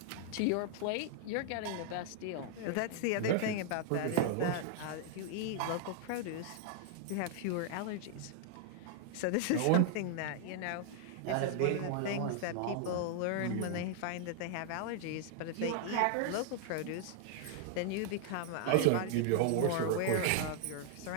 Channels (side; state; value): both; different; correlation -0.01